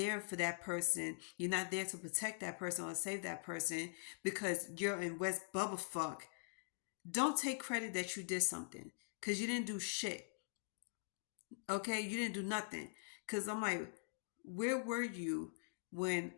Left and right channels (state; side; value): silent; right; digital silence